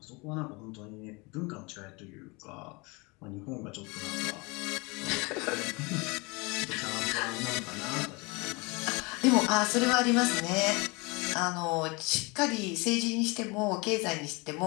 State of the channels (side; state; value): right; quieter; 27.0 dB